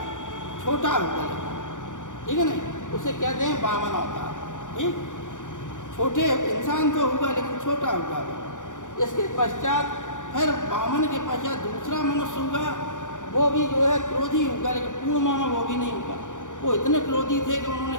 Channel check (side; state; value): right; late; 0.86 ms